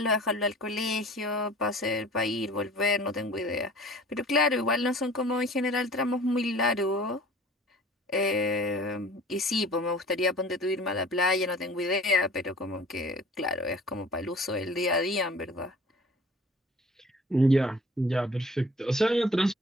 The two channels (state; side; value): normal; both; correlation 0.47